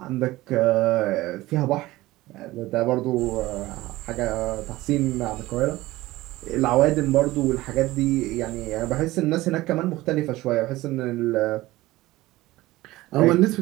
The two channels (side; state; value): left; quieter; 18.1 dB